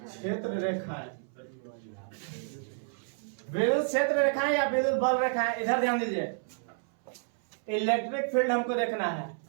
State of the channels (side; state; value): left; silent; 58 dB below the other